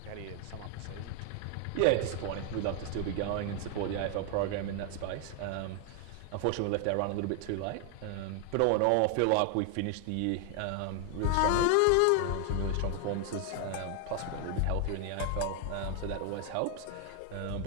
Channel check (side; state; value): both; different; correlation 0.00